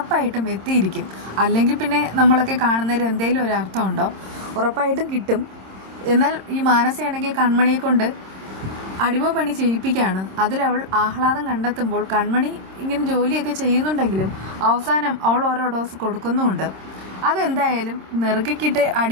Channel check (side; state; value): left; late; 26 ms